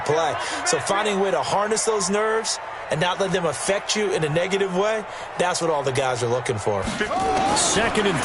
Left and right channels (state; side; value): identical; both; correlation 1.00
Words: play. So finding a way to harness those nerves and not let them affect you in a negative way, that's what all the guys are looking for. 2nd and